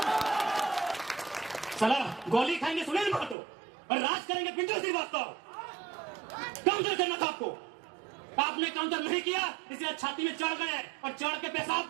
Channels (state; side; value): drops out; left; at 3.4 s